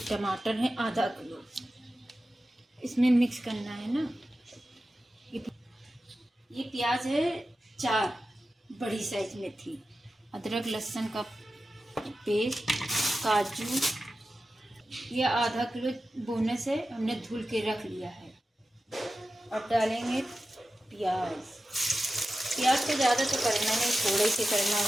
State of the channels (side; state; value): both; normal; correlation 0.93